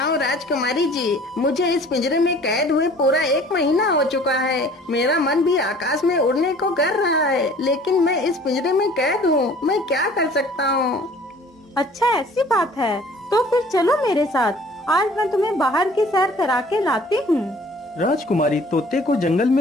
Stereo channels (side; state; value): both; normal; correlation 0.51